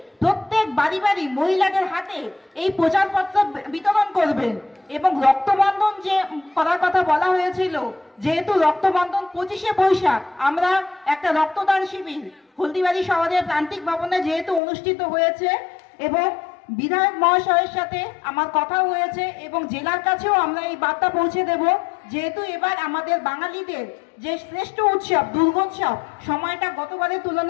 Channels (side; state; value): right; drops out; at 14.6 s